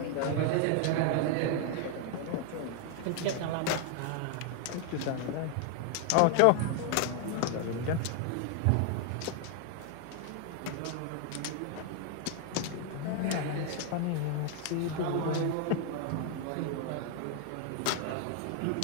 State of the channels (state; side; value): different; both; correlation 0.01